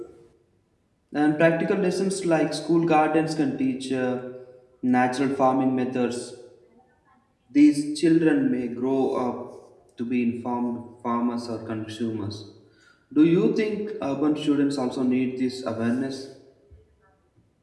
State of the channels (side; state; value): both; identical; correlation 1.00